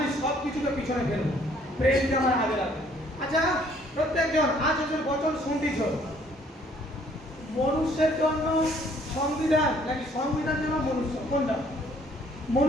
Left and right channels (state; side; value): normal; both; correlation 0.61